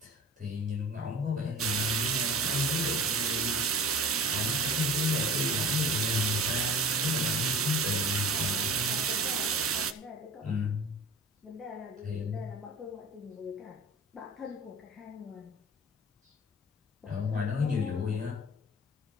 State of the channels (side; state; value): both; normal; correlation 0.40